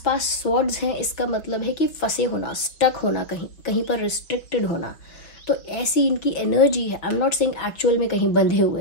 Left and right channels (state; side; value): late; right; 5.4 ms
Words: स्वॉर्ड्स हैं, इसका मतलब है कि फंसे होना, स्टक होना, कहीं पर रिस्ट्रिक्टेड होना। तो ऐसी इनकी एनर्जी है। I am not saying actual में कहीं बंधे